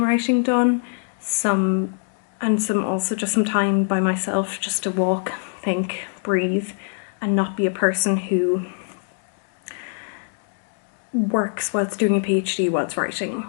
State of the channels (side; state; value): right; silent; digital silence